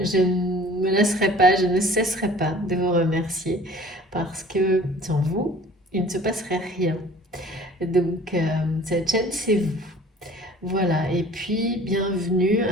ne me laisserai pas, je ne cesserai pas de vous remercier parce que sans vous, il ne se passerait rien. Donc, cette chaîne, c'est vous. Voilà, et puis bienvenue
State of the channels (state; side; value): normal; both; correlation 0.48